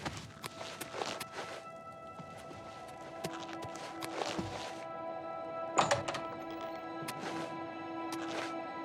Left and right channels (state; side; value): identical; both; correlation 1.00